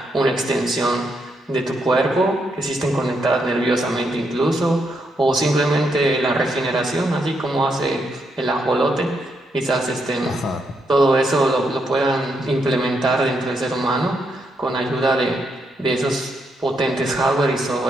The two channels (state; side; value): normal; both; correlation 0.79